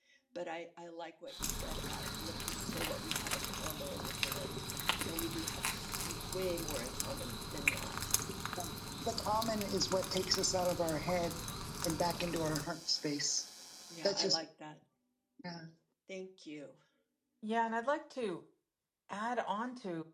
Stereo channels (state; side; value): identical; both; correlation 1.00